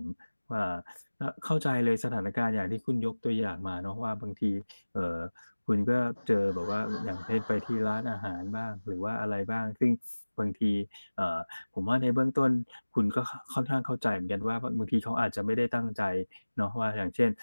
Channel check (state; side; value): inverted; both; correlation -1.00